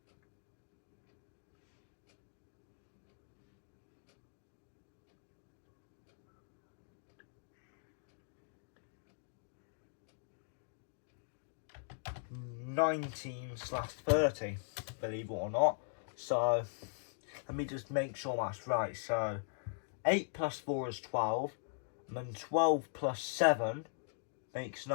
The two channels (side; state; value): right; silent; digital silence